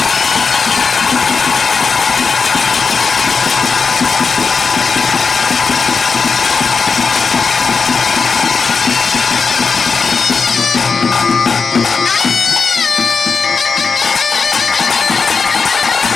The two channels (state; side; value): quieter; right; 5.1 dB